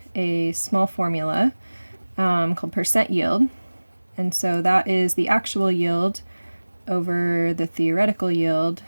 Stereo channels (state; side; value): inverted; both; correlation -1.00